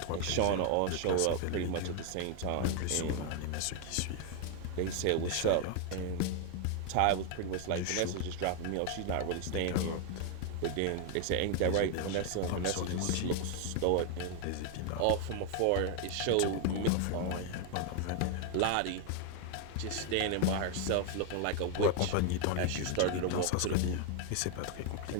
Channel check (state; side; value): different; both; correlation 0.01